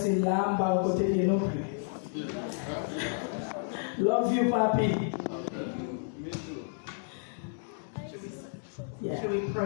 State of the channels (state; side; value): silent; right; digital silence